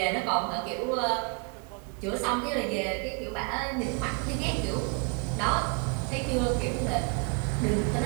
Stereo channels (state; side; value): quieter; left; 35.2 dB